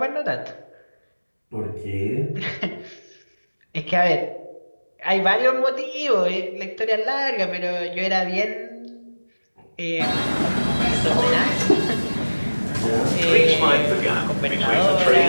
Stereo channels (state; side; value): inverted; both; correlation -1.00